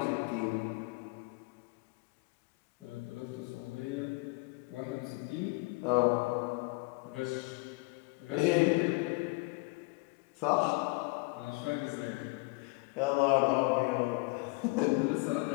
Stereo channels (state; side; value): quieter; right; 28.1 dB